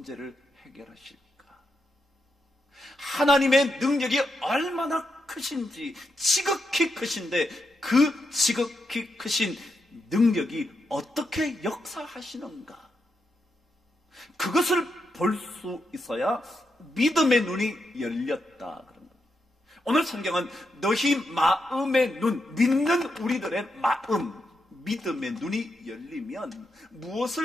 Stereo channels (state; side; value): normal; both; correlation 0.83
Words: 해결하실까? 하나님의 능력이 얼마나 크신지, 지극히 크신데 그 지극히 크신 능력이 어떻게 역사하시는가? 그것을 볼 수 있어야 믿음의 눈이 열렸다 그런 겁니다. 오늘 성경은 너희 마음의 눈, 믿는 우리들의 마음, 믿음의 눈이 열리면